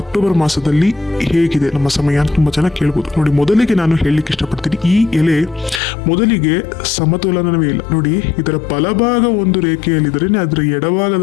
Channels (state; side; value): drops out; right; at 5.8 s